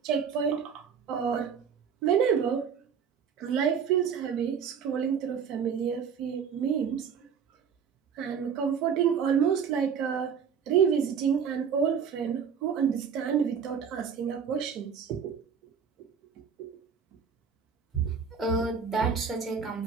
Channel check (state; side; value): quieter; left; 6.9 dB